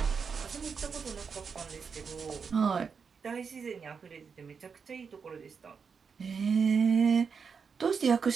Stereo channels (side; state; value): left; quieter; 5.9 dB